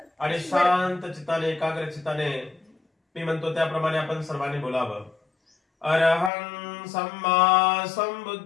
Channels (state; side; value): drops out; right; at 6.3 s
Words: आणि शांत चित्ताने एकाग्र चित्ताने मी म्हणतो त्याप्रमाणे आपण सर्वांनी बोलावं. अरहं सम्मा